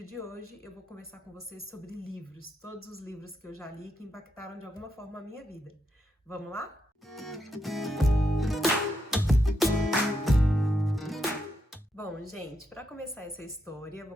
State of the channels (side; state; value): both; normal; correlation 0.82